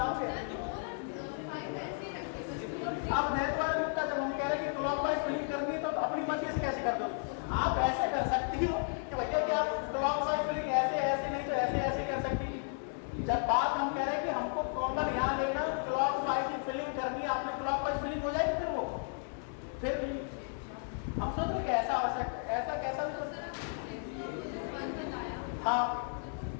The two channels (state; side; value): silent; right; 55 dB below the other